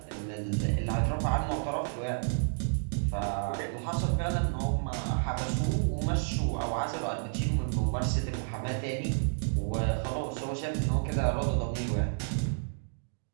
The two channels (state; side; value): silent; left; digital silence